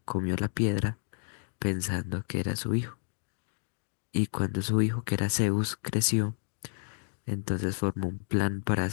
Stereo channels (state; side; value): silent; right; digital silence